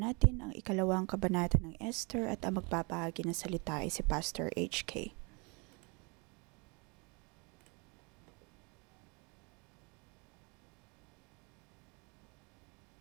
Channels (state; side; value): quieter; left; 30.7 dB